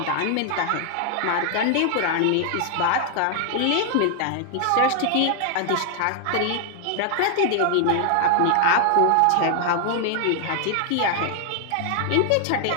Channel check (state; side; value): different; both; correlation 0.00